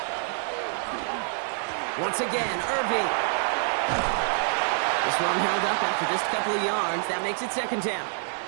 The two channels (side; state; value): left; silent; 60 dB below the other